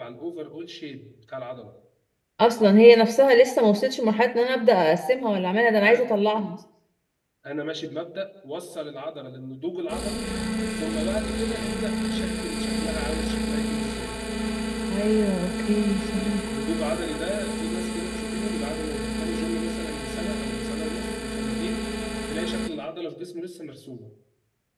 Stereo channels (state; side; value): identical; both; correlation 1.00